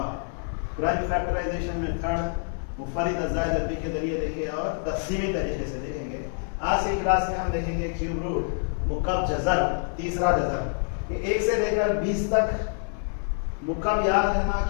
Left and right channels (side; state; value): right; silent; 60 dB below the other